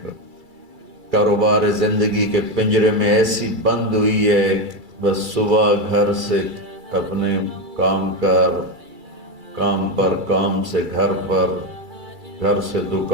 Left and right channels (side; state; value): left; late; 2.3 ms